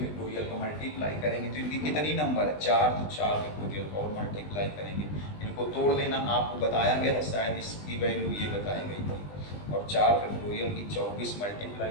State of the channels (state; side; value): late; right; 20 ms